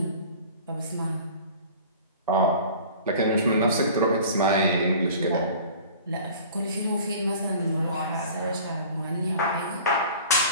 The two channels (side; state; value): both; inverted; correlation -0.44